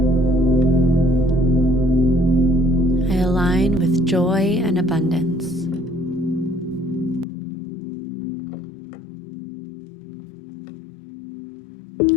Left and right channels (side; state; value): right; drops out; at 7.2 s